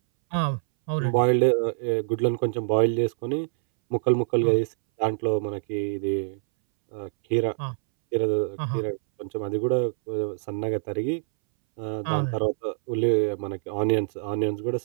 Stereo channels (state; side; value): silent; left; 61 dB below the other